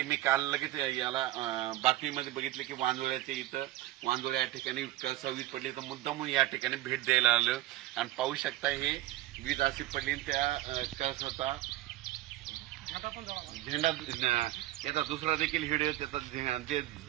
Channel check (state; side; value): quieter; left; 15.6 dB